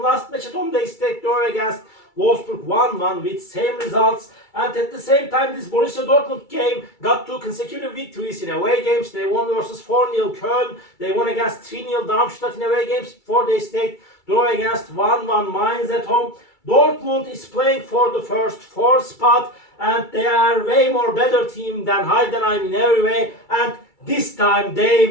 last match at home, they stayed draw against Wolfsburg 1-1 with same results. And at the same time, this Borussia Dortmund game got 2 consecutive victories in away games. They won versus 4-0 Köln. They won against 3-0 Darmstadt in away games before they stayed draw against 1-1 Mainz at home. Dortmund is playing for the first 4 spot, and they are way more better team than Heidenheim in every way, and this time they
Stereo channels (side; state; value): right; late; 2.3 ms